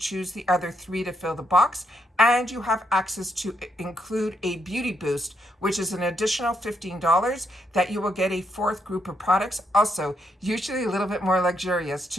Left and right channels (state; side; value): normal; both; correlation 0.77